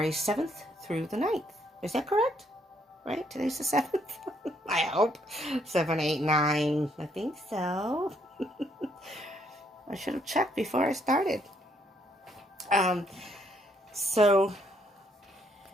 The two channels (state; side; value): normal; both; correlation 0.70